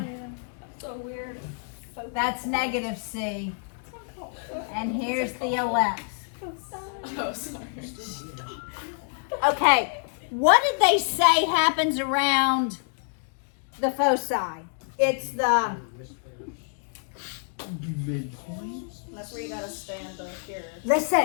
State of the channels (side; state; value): right; silent; 60 dB below the other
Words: So weird. That's negative C. And here's the ellipse. Oh, sorry. Okay, what did they say happens around the foci? It's the That's where you gotta stand up here.